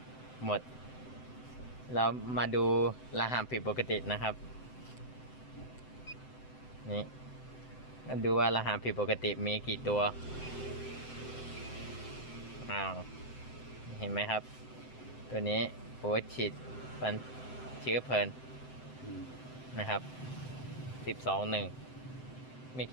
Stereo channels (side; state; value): right; late; 7.8 ms